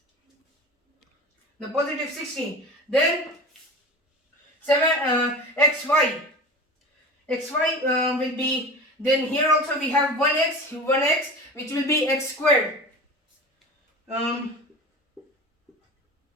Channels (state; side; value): normal; both; correlation 0.33